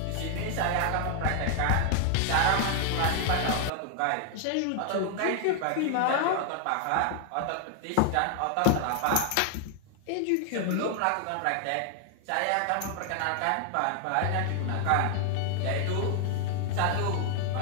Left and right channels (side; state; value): both; different; correlation 0.00